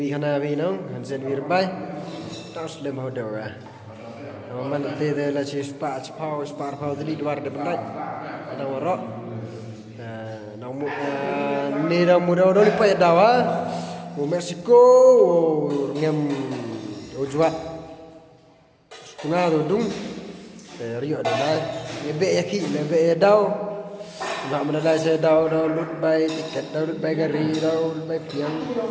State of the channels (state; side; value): identical; both; correlation 1.00